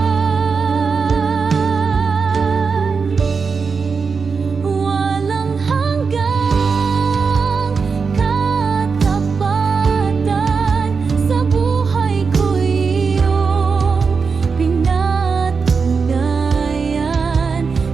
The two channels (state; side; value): quieter; left; 5.2 dB